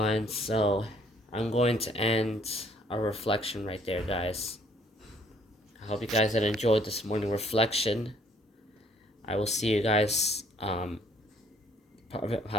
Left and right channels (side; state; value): both; normal; correlation 0.62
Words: so I'm going to end our reflection right there, guys. I hope you guys had enjoyed this morning reflection. I will see you guys